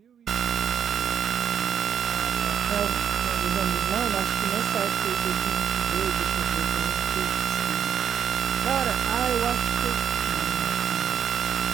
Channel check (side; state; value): left; quieter; 8.5 dB